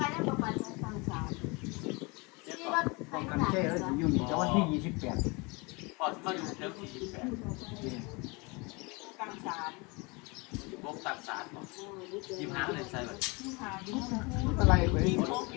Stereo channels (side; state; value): right; quieter; 27.9 dB